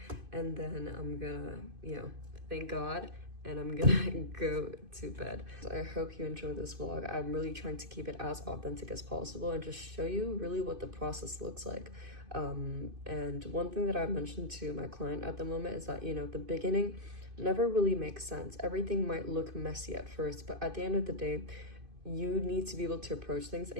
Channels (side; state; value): left; late; 2.5 ms